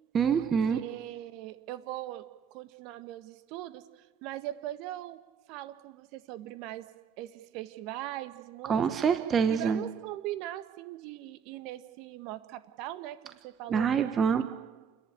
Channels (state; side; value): quieter; left; 7.1 dB